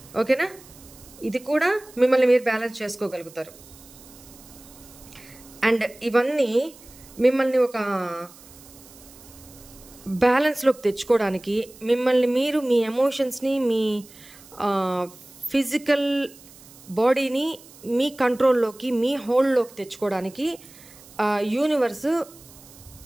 ఓకేనా? ఇది కూడా మిమ్మల్ని మీరు బ్యాలెన్స్ చేసుకోగలుగుతారు. అండ్ ఇవన్నీ మిమ్మల్ని ఒక బ్యాలెన్స్లోకి తెచ్చుకోవడానికి, మిమ్మల్ని మీరు మీ ఎమోషన్స్ని, మీ ఫిజికల్ బాడీని మీ కంట్రోల్లోకి, మీ హోల్డ్లోకి తెచ్చుకోవడానికి యూనివర్స్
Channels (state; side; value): noise; right; hiss, 22 dB below the sound